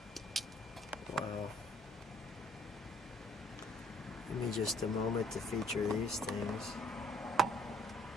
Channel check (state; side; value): normal; both; correlation 0.62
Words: Wow. Give me just a moment to feature these things.